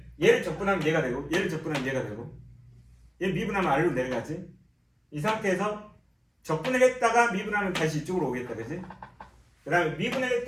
얘를 적분하면 얘가 되고, 얘를 적분하면 얘가 되고, 얘 미분하면 아래로 내려가지. 이 상태에서 적분을 했다가 미분하면 다시 이쪽으로 오겠다, 그지? 그 다음에 미분을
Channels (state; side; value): identical; both; correlation 1.00